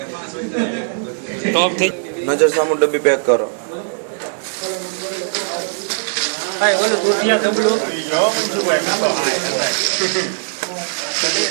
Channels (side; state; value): left; silent; digital silence